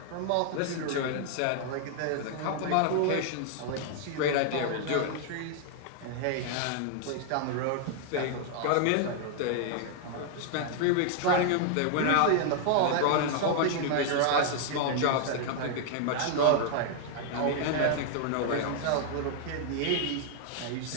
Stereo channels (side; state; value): both; different; correlation 0.00